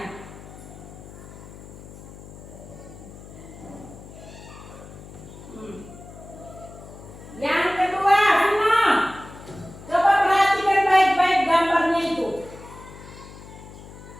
Yang kedua, Vino, coba perhatikan baik-baik gambarnya itu.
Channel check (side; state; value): left; noise; hum, 16 dB below the sound